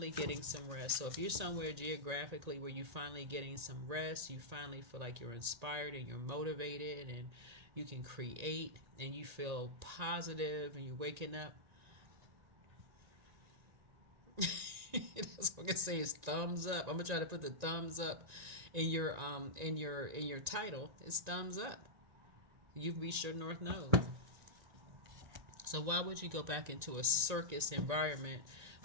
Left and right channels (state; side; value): late; left; 1.9 ms